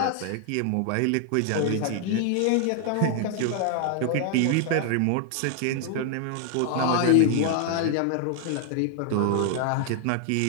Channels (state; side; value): different; both; correlation 0.00